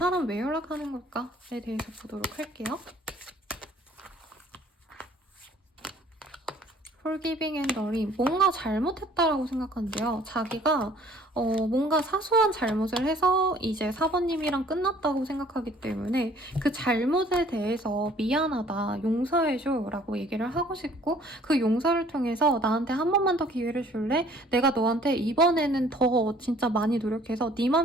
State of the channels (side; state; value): both; normal; correlation 0.56